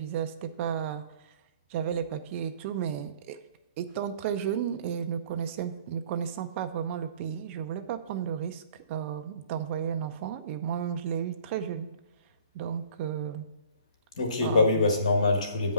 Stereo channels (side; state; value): both; inverted; correlation -0.53